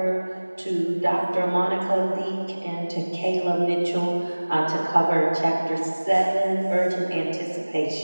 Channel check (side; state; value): both; inverted; correlation -1.00